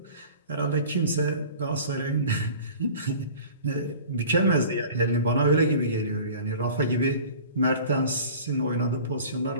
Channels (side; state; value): both; inverted; correlation -0.43